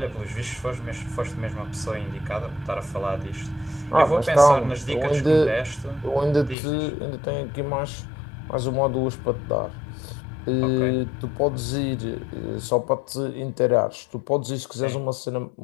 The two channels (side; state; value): right; drops out; at 6.6 s